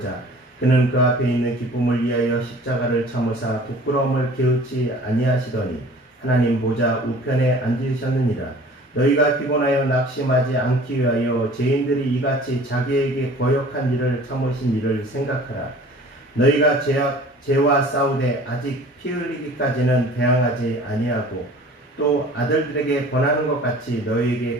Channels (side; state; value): both; normal; correlation 0.47